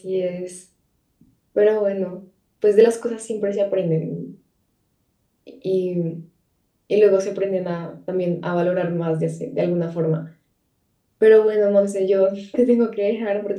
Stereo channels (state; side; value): identical; both; correlation 1.00